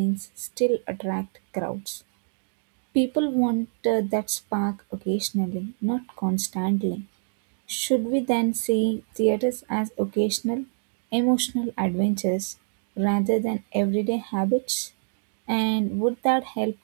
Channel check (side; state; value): left; silent; digital silence